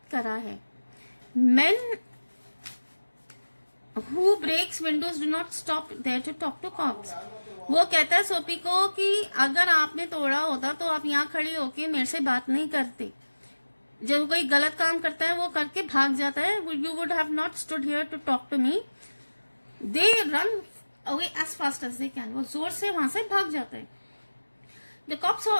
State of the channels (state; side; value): inverted; both; correlation -1.00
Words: करा है. Men who breaks windows do not stop there to talk to cops. वो कहता है सोपी को कि अगर आपने तोड़ा होता तो आप यहाँ खड़े होके मेरे से बात नहीं करते. जब कोई गलत काम करता है वो करके भाग जाता है. You would have not stood here to talk to me. They run away as fast as they can. वो जोर से वहां से भाग जाता है. The cop saw